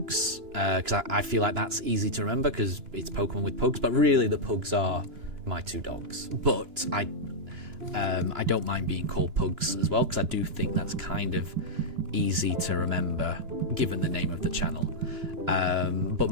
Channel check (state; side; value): late; left; 3.0 ms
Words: because I feel like that's easy to remember because it's Pokemon with Pugs, but really the Pugs are my two dogs. But I don't mind being called Pugs as well, because I do think that's kind of easy to remember given the name of the channel. But